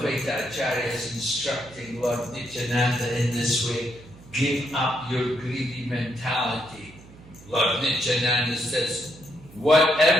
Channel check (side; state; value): right; noise; hum, 21 dB below the sound